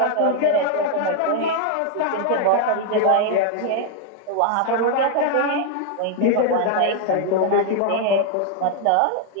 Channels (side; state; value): both; different; correlation 0.00